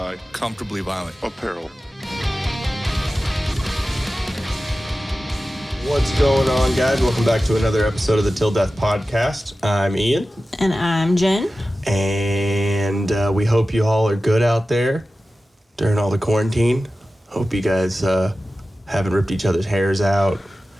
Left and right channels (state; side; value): normal; both; correlation 0.95